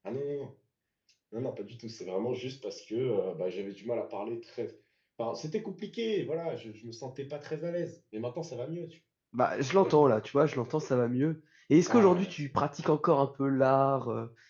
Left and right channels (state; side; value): identical; both; correlation 1.00